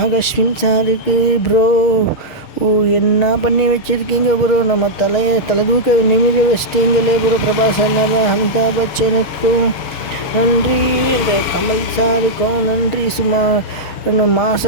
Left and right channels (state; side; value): late; right; 6.4 ms